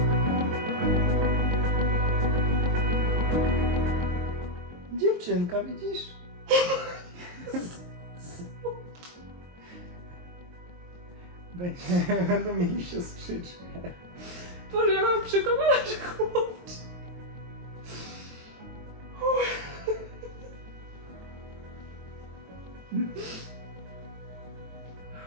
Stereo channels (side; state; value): left; late; 23 ms